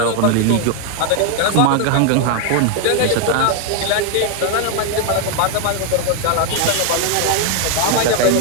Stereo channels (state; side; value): different; both; correlation 0.01